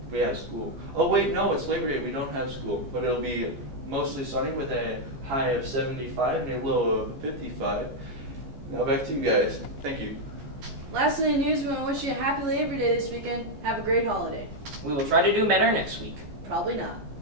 we have school. Oh wait, no, it's Labor Day, we don't have school. But it'll be mostly sunny with a high of 75 and a low of 55. Now back to you guys. Thank you. Last in the news, we want to wish you a happy Labor Day this weekend. Have a great holiday. We will try to do better next week. Probably not.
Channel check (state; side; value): late; left; 14 ms